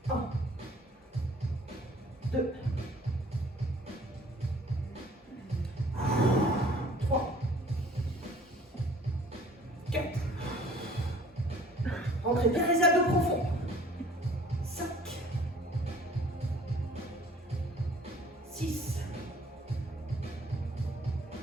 1, 2, 3, 4. Rentrez bien les abdos profonds. 5, 6,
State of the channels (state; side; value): normal; both; correlation 0.53